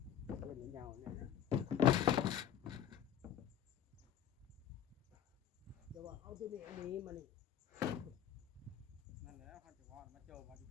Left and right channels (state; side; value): quieter; right; 10.1 dB